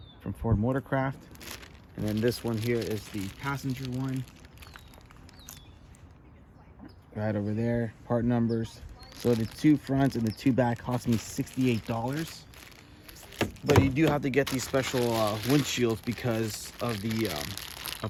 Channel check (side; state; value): both; identical; correlation 1.00